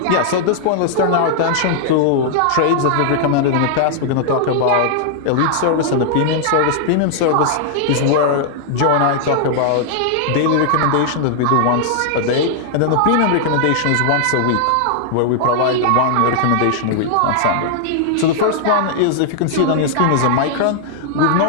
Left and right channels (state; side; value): different; both; correlation -0.01